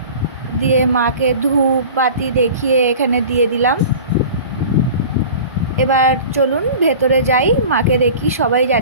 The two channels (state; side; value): inverted; both; correlation -0.39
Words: দিয়ে মাকে ধূপ বাতি দেখিয়ে এখানে দিয়ে দিলাম। এবার চলুন ভেতরে যাই, মাকে দেখি, সবাই